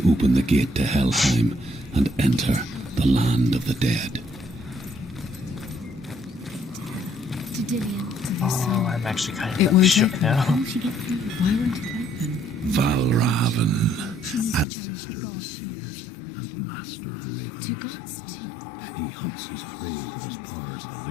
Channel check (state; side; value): drops out; right; at 14.7 s